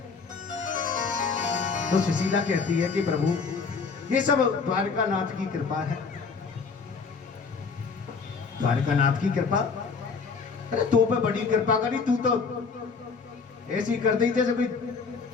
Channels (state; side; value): quieter; right; 5.1 dB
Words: तो सुशीला कहती है कि प्रभु ये सब द्वारकानाथ की कृपा है, द्वारकानाथ की कृपा। अरे तो पे बड़ी कृपा करी, तू तो ऐसी कर दी जैसे कोई